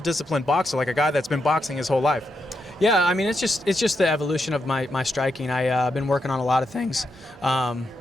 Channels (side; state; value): both; normal; correlation 0.83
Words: boxer, like a guy that's been boxing his whole life. Yeah, I mean, it's just the evolution of my striking. I've been working on a lot of things,